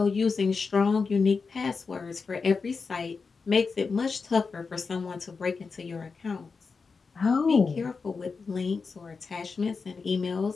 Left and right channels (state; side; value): quieter; right; 4.8 dB